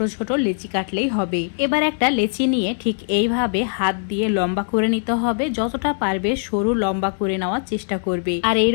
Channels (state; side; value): silent; right; digital silence